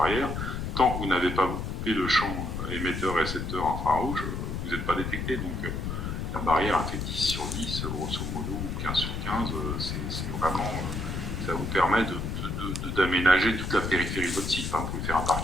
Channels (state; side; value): noise; left; rumble, 3 dB below the sound